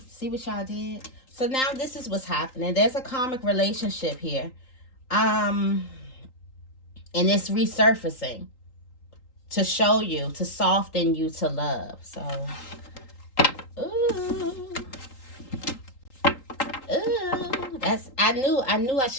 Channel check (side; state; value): right; late; 3.8 ms